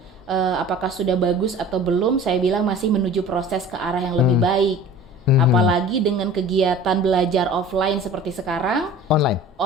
apakah sudah bagus atau belum, saya bilang masih menuju proses ke arah yang lebih baik. Apalagi dengan kegiatan belajar offline seperti sekarang,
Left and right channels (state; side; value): normal; both; correlation 0.42